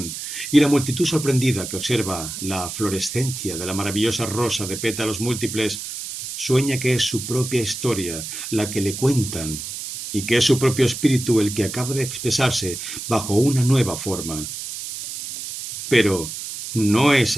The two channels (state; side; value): noise; right; hiss, 8 dB below the sound